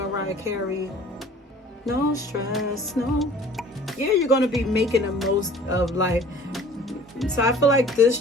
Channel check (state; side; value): normal; both; correlation 0.49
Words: Carey? No stress, no. Yeah, you're going to be making the most of life. So I feel like this